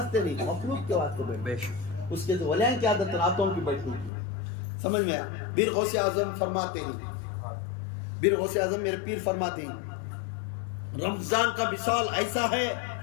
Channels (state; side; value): drops out; right; at 4.1 s